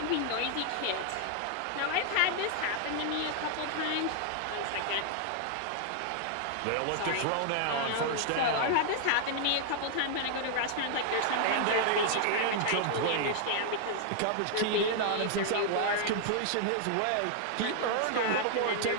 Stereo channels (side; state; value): both; different; correlation -0.01